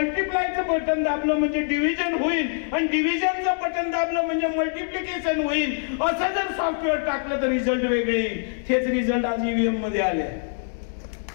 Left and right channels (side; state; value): right; silent; 62 dB below the other